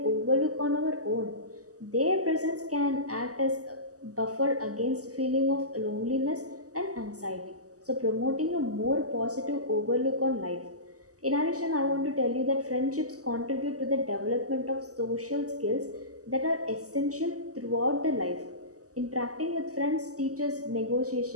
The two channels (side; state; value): left; late; 0.66 ms